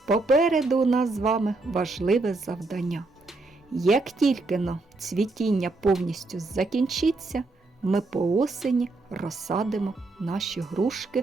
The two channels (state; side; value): quieter; left; 3.3 dB